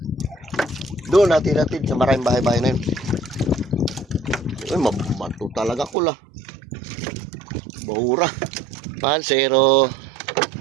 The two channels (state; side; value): drops out; left; at 6.0 s